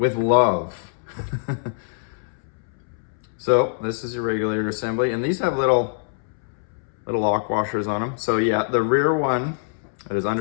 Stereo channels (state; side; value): silent; right; 63 dB below the other